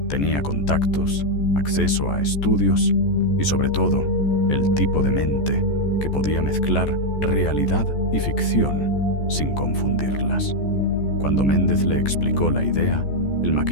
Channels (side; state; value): right; late; 14 ms